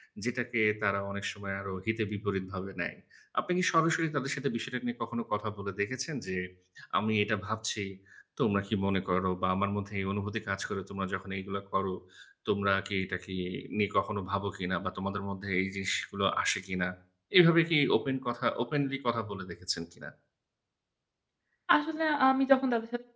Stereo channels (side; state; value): both; identical; correlation 1.00